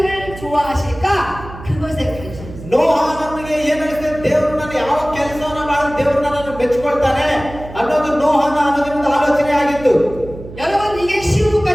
좋아하실까? 그것에 관심. ನೋಹ ನಮಗೆ ಏನ್ ಅನಿಸ್ತದೆ, ದೇವರು ನನ್ನ ಯಾವ ಕೆಲಸವನ್ನ ಮಾಡಿ ದೇವರು ನನ್ನನ್ನು ಮೆಚ್ಚಿಕೊಳ್ತಾನೆ ಅನ್ನೋದು ನೋಹನ ಅನ್ನೋದ್ರಿಂದ ಆಲೋಚನೆ ಆಗಿತ್ತು. 여러분 이게 쉬운 것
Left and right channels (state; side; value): noise; right; hum, 14 dB below the sound